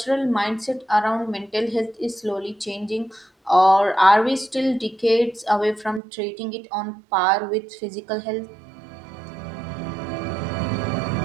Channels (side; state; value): left; drops out; at 6.0 s